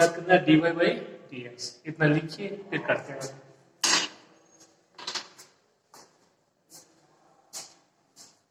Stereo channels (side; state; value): both; identical; correlation 1.00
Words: करना है d Y by D x. इतना लिखिए फिर करते हैं।